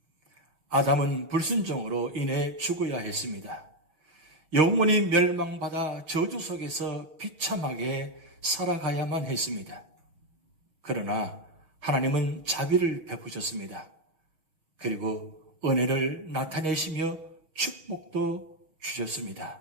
아담은 불순종으로 인해 죽어야 했습니다. 영원히 멸망받아 저주 속에서 비참하게 살아가야만 했습니다. 그러나 하나님은 자비를 베푸셨습니다. 그리고 은혜를 나타내시며 축복도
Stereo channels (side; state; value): left; late; 6.3 ms